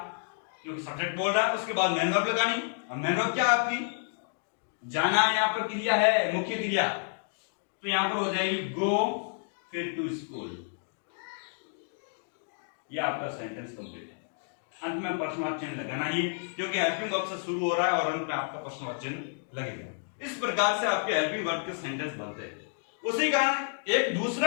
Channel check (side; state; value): right; silent; digital silence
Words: क्योंकि सब्जेक्ट बोल रहा है। उसके बाद मेन वर्ब लगानी, और मेन वर्ब क्या आपकी जाना, यहाँ पर क्रिया है, मुख्य क्रिया, तो यहां पर हो जाएगी गो, फिर टू स्कूल। ये आपका सेंटेंस कंप्लीट है। अंत में प्रश्नवाचक चिन्ह लगाना ही, क्योंकि हेल्पिंग वर्ब से शुरू हो रहा है और अंत में आपका प्रश्नवाचक चिन्ह लगेगा। इस प्रकार से आपके हेल्पिंग वर्ब के सेंटेंस बनते हैं। उसी कारण एक